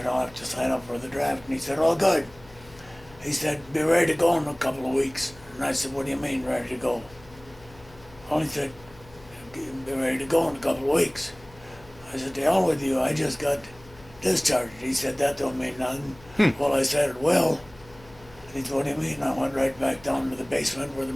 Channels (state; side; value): noise; left; hum, 23 dB below the sound